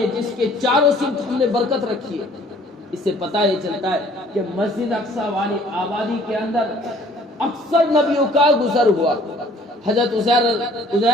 جس کے چاروں سمت ہم نے برکت رکھی ہے۔ اس سے پتہ یہ چلتا ہے کہ مسجد اقصی والی آبادی کے اندر اکثر نبیوں کا گزر ہوا۔ حضرت عزیر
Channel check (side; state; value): both; normal; correlation 0.56